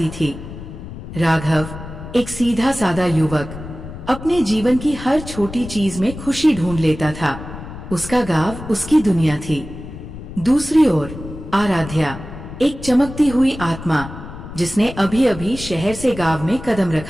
थी। राघव एक सीधा सादा युवक अपने जीवन की हर छोटी चीज में खुशी ढूंढ लेता था। उसका गांव उसकी दुनिया थी। दूसरी ओर आराध्या एक चमकती हुई आत्मा, जिसने अभी अभी शहर से गांव में कदम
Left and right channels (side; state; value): left; noise; rumble, 12 dB below the sound